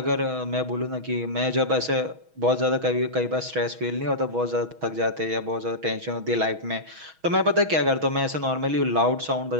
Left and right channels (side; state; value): left; late; 6.2 ms